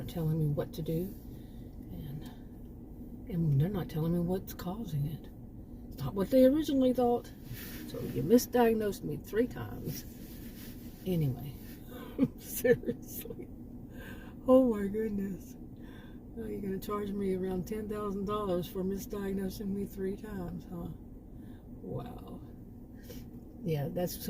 telling me what to do. And they're not telling me what's causing it. It's not what they originally thought. So you misdiagnosed me 3 times. Anyway, seriously. Oh my goodness. Now you're going to charge me around $10,000 for misdiagnosing me 3 times, huh? Wow. Yeah, that's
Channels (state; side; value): identical; both; correlation 1.00